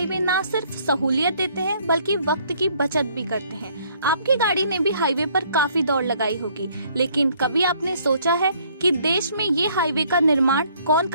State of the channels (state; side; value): inverted; both; correlation -0.63